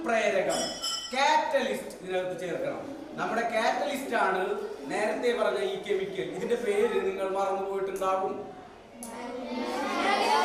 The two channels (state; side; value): identical; both; correlation 1.00